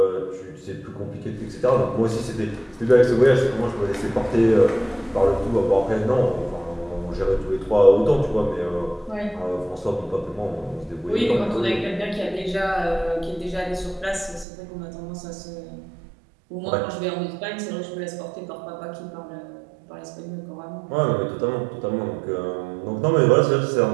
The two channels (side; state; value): left; drops out; at 14.5 s